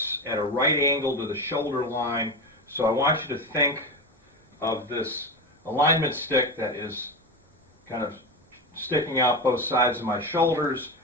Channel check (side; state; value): both; normal; correlation 0.20